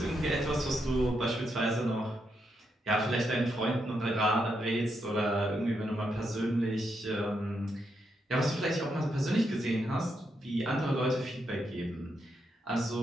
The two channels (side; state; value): both; normal; correlation 0.81